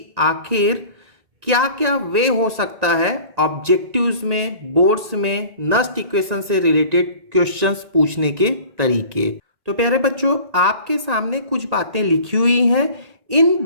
आखिर क्या क्या वे हो सकता है ऑब्जेक्टिव्स में, बोर्ड्स में नस्ट इक्वेशन से रिलेटेड क्वेश्चंस पूछने के तरीके। तो प्यारे बच्चों, आपके सामने कुछ बातें लिखी हुई हैं। इन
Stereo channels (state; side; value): late; left; 1.9 ms